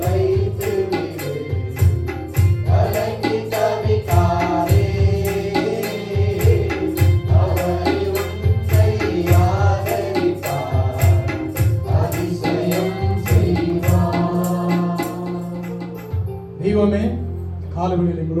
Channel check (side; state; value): both; identical; correlation 1.00